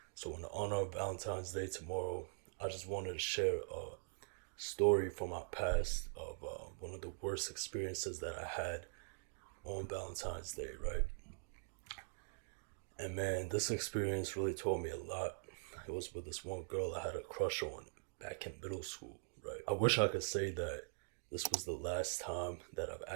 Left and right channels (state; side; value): silent; left; digital silence